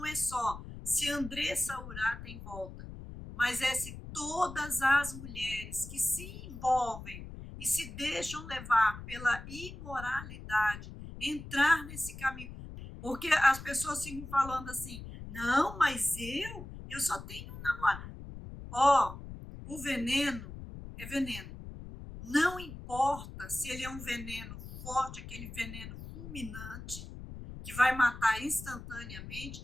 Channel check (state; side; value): noise; left; rumble, 12 dB below the sound